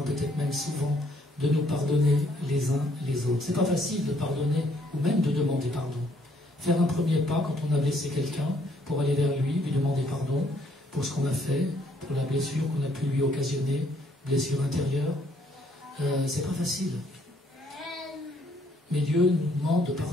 peut-être même souvent, de nous pardonner les uns les autres. C'est pas facile de pardonner ou même de demander pardon. Faire un premier pas quand on a blessé quelqu'un pour aller vers lui, lui demander pardon pour ce qu'on a fait, pour la blessure qu'on a pu lui occasionner, blessure intérieure, c'est pas facile. Mais Dieu nous demande de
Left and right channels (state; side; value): normal; both; correlation 0.67